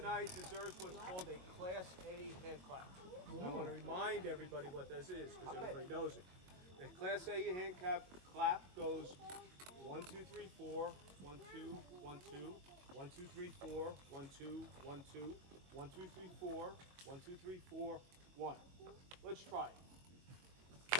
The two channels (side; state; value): left; late; 22 ms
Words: deserves what's called a Class A hand clap. I want to remind everybody what this is because everybody knows it. The Class A hand clap goes 1, 2, 3, 4, 1, 2, 1, 2, 1, 2, 3, 4, 1, 2, 1, 2, 1, 2, 3, 4, 1, 2, 3, 4, 1. Let's try it.